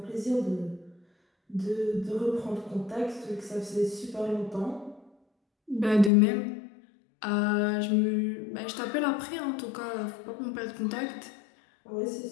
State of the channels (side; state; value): right; drops out; at 6.1 s